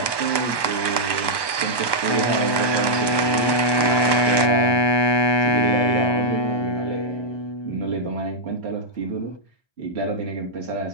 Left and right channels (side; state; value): right; late; 1.1 ms